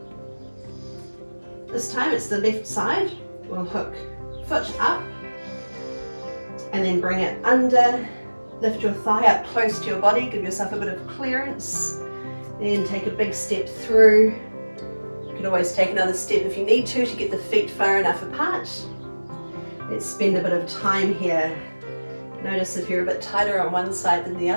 This time it's the left side. We'll hook foot up. And then bring it under. Lift your thigh up close to your body. Give yourself a bit of clearance. Then take a big step through. You can always take another step if you need to get the feet far enough apart. Let's spend a bit of time here. Notice if you're a bit tighter on one side than the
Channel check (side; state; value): both; inverted; correlation -1.00